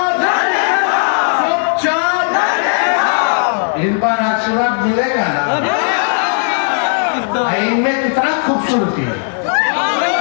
इन पर आशीर्वाद मिलेगा ना। इनमें कितना खूबसूरती है,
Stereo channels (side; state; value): right; silent; 70 dB below the other